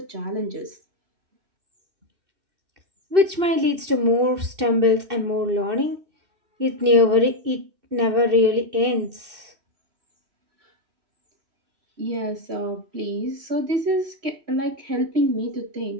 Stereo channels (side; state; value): left; late; 2.6 ms